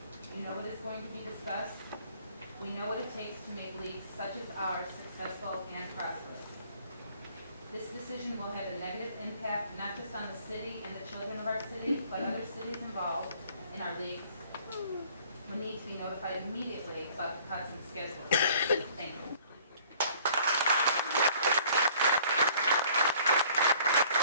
We know what is going to be discussed. We know what it takes to make leagues such as ours successful and prosperous. This decision will have a negative impact not just on the city and the children of our city, but other cities involved in our leagues will need to be notified immediately about the cuts and schedules. Thank you.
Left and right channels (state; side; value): inverted; both; correlation -0.55